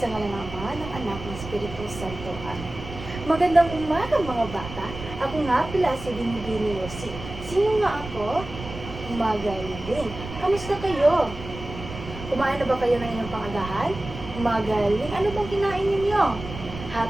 ngalan ng Ama, ng Anak, ng Espiritu Santo. Amen. Magandang umaga mga bata. Ako nga pala si Binibini Rosie. Sino nga ako? Magaling. Kamusta kayo? Kumain na ba kayo ng inyong pangagahan? Magaling. Ano bang kinain ninyo?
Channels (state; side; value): noise; right; rumble, 11 dB below the sound